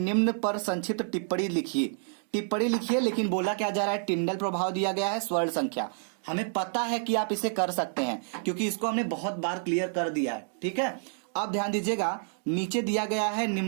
पर संक्षिप्त टिप्पणी लिखिए। टिप्पणी लिखिए, लेकिन बोला क्या जा रहा है? टिंडल प्रभाव दिया गया है, स्वर्ण संख्या। हमें पता है कि आप इसे कर सकते हैं, क्योंकि इसको हमने बहुत बार क्लियर कर दिया है। ठीक है। अब ध्यान दीजिएगा, नीचे दिया गया है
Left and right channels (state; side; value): silent; left; digital silence